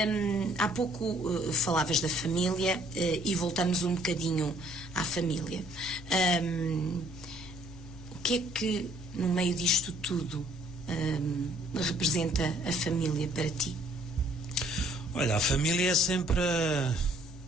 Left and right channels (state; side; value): normal; both; correlation 0.62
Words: há pouco falavas da família e voltamos um bocadinho à família. O que é que, no meio disto tudo, representa a família para ti? Olha, a família é sempre